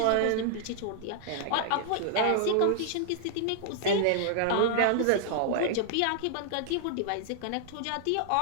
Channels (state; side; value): different; both; correlation -0.01